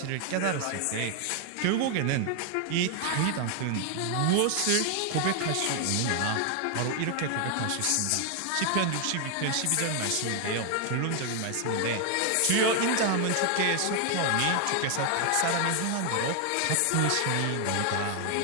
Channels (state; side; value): different; both; correlation 0.00